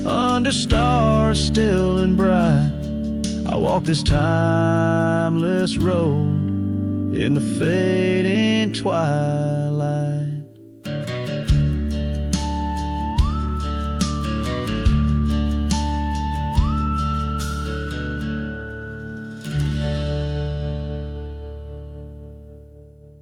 under stars still and bright, I walk this timeless road in the fading twilight.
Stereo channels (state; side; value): identical; both; correlation 1.00